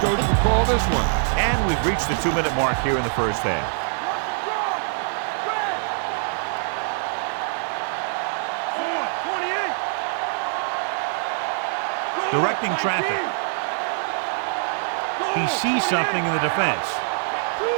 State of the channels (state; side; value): silent; left; digital silence